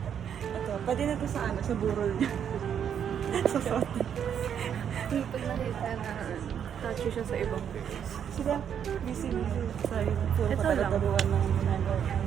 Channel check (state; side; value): quieter; left; 8.5 dB